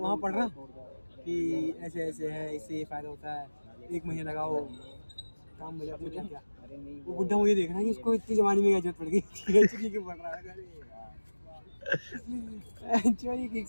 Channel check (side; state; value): both; inverted; correlation -1.00